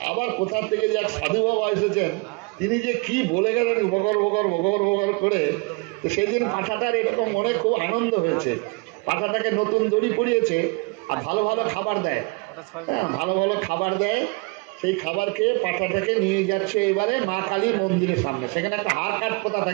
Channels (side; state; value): left; quieter; 29.4 dB